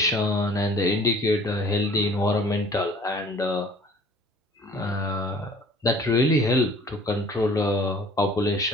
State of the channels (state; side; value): normal; both; correlation 0.51